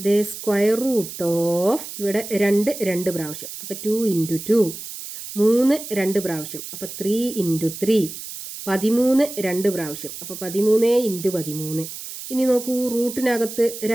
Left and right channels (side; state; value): right; noise; hiss, 10 dB below the sound